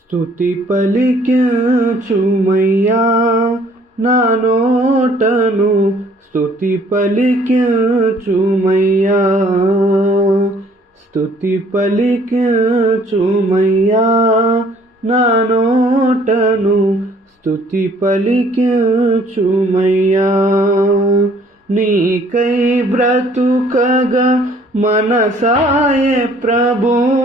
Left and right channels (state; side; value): normal; both; correlation 0.59